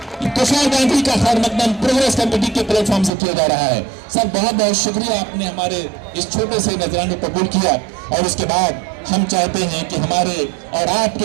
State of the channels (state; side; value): drops out; left; at 3.1 s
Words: तुषार गांधी का खैर मकदम प्रोग्रेस कमेटी के प्लेटफॉर्म से किया जा रहा है। सर बहुत बहुत शुक्रिया, आपने हमारे इस छोटे से नजराने को कबूल किया। और उसके बाद हम चाहते हैं कि हमारे और